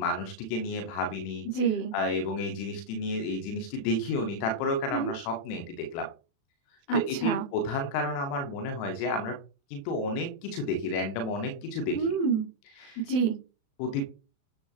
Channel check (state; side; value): late; right; 36 ms